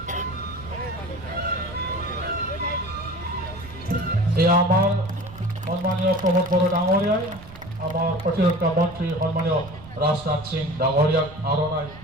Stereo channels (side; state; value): right; noise; rumble, 17 dB below the sound